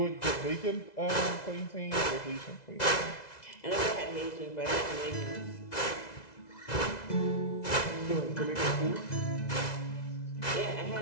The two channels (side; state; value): right; late; 2.0 ms